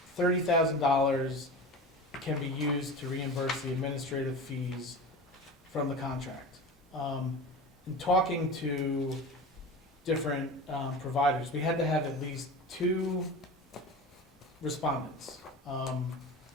$30,000 can be used to reimburse the administrative fees from the contract. In talking to different providers, we had to have at least 2 respondents.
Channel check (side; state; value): both; normal; correlation 0.31